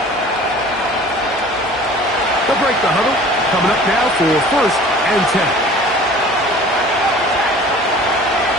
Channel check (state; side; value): normal; both; correlation 0.46